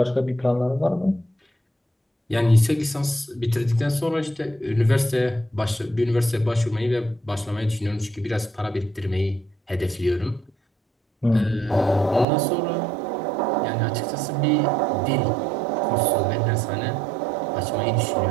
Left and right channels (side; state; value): left; drops out; at 12.2 s